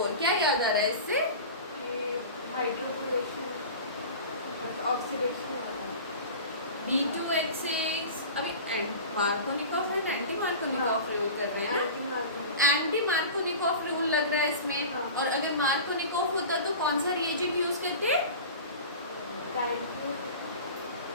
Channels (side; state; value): both; inverted; correlation -0.35